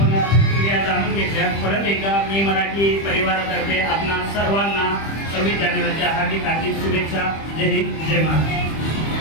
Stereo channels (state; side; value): late; right; 25 ms